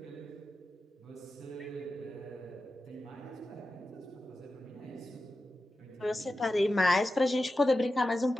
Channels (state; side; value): normal; both; correlation 0.92